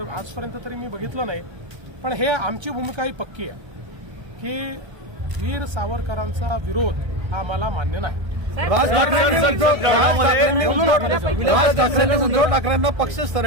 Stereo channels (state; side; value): late; left; 1.3 ms